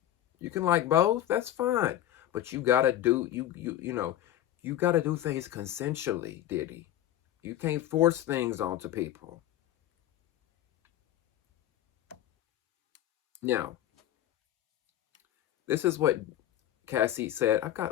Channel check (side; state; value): right; quieter; 12.4 dB